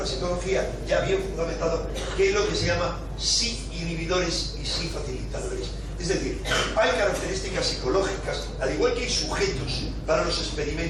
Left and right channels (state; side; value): identical; both; correlation 1.00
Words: ya bien fundamentado, que es lo que se llama sí inhibidores y sí facilitadores. Es decir, hay características psicológicas, al igual que hay sujetos para los